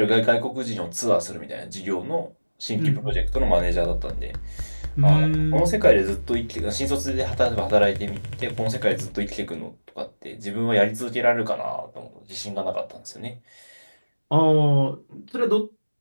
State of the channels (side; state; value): both; inverted; correlation -1.00